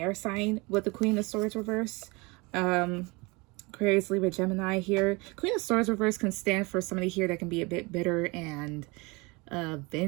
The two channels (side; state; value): left; quieter; 26.3 dB